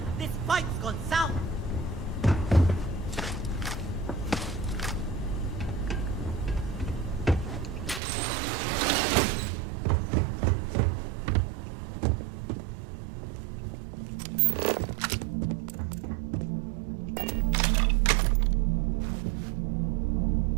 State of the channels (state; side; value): drops out; left; at 8.0 s